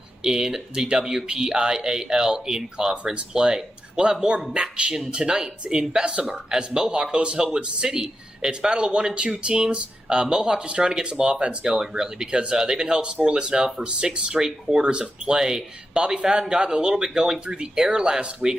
in the WPIAL in conference play. We'll have more action tonight in Bessemer as Mohawk hosts Elwood City. It's battle of 1 and 2 teams. Mohawk just trying to get some offense going, really, because they've been held scoreless now for 6 straight quarters of play. Bobby Fadden got a little bit going through the air last week,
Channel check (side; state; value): both; normal; correlation 0.88